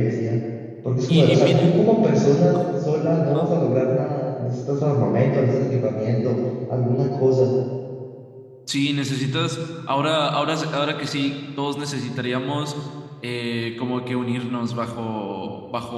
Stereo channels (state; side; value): identical; both; correlation 1.00